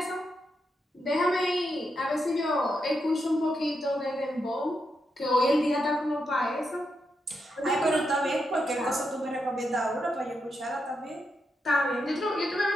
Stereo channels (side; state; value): both; normal; correlation 0.84